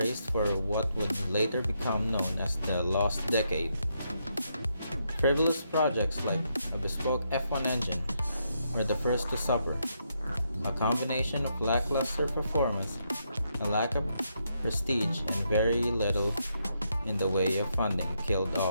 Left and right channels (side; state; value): both; inverted; correlation -0.79